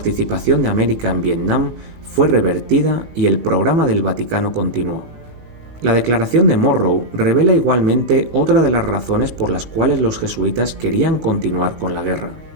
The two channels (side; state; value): left; late; 19 ms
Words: de América en Vietnam fue revertida y el programa del Vaticano continuó. La declaración de Monroe revela igualmente otra de las razones por las cuales los jesuitas querían continuar con la guerra,